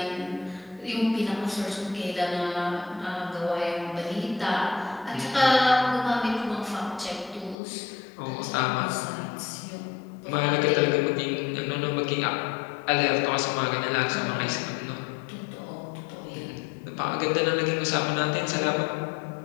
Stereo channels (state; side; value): drops out; right; at 7.6 s